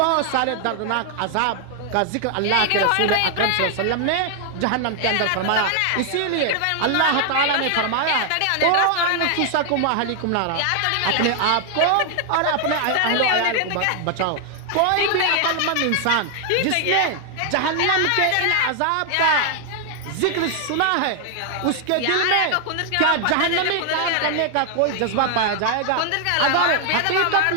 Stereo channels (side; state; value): both; different; correlation 0.00